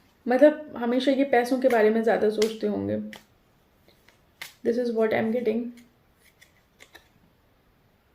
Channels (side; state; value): both; identical; correlation 1.00